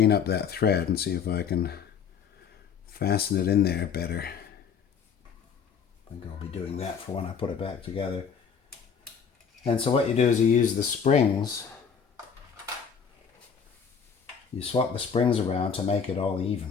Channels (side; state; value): right; quieter; 6.7 dB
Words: up that thread and see if I can fasten it in there better. I think I'll be doing that for when I put it back together. And so what you do is you use the springs. You swap the springs around to make it all